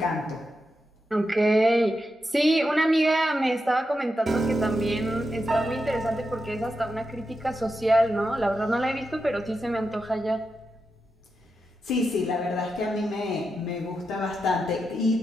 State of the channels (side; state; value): both; normal; correlation 0.88